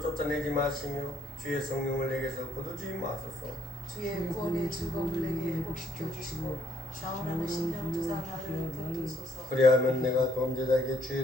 마시며 주의 성령을 내게서 거두지 마소서. 주의 구원의 즐거움을 내게 회복시켜 주시고 자원하는 심령 주사 나를 붙드소서. 그리하면 내가 범죄자에게 주의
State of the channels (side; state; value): both; normal; correlation 0.69